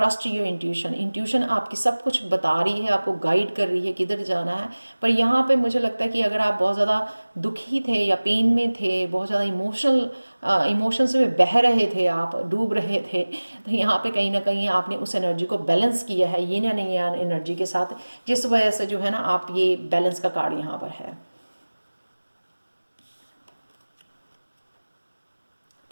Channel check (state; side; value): inverted; both; correlation -1.00